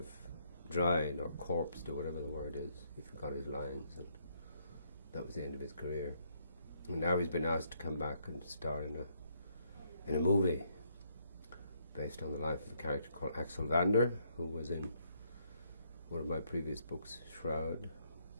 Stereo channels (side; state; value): both; inverted; correlation -0.72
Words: of dried or corpsed or whatever the word is. He forgot his lines, and that was the end of his career. And now he's been asked to come back and star in a movie based on the life of a character called Axel Vander, who was in one of my previous books, Shroud.